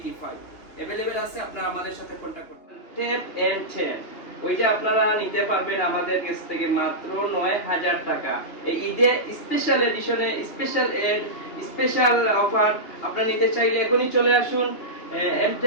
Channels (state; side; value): late; right; 2.8 ms